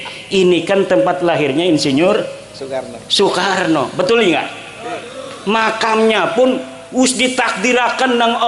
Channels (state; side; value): identical; both; correlation 1.00